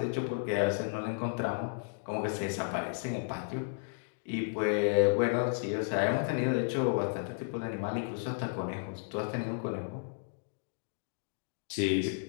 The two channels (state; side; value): silent; right; digital silence